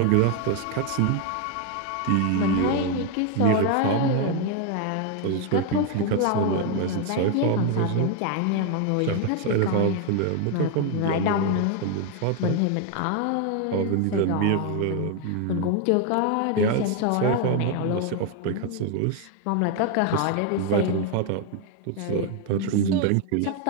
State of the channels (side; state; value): both; different; correlation 0.01